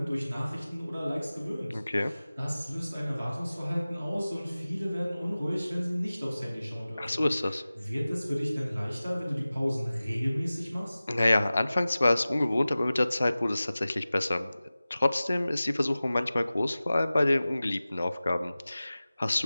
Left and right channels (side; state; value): both; inverted; correlation -0.97